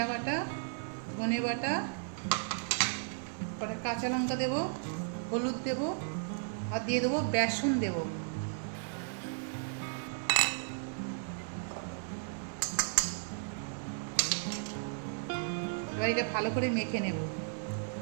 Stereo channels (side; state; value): left; silent; 55 dB below the other